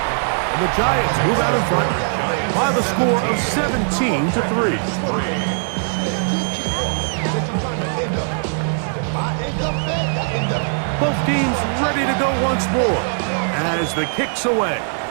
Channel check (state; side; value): silent; left; 66 dB below the other